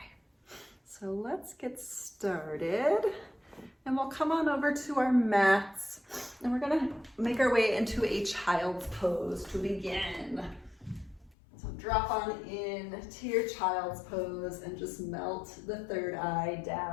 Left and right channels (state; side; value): drops out; right; at 11.4 s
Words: so let's get started. And we'll come on over to our mats and we're gonna make our way into a child's pose to begin. So drop on in to your child's pose and just melt the third eye